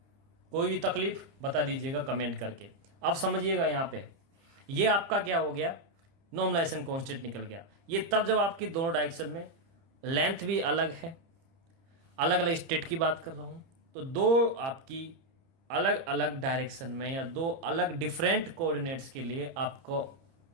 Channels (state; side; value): late; left; 30 ms